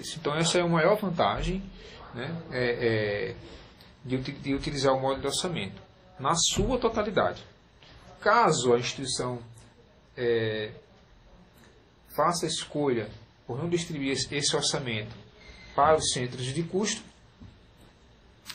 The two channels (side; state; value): both; identical; correlation 1.00